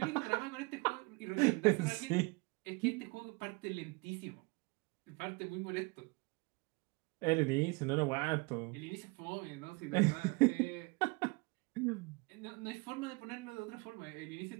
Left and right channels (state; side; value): quieter; left; 28.0 dB